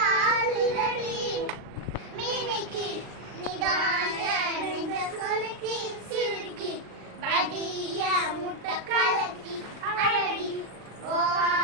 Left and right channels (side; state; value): left; late; 39 ms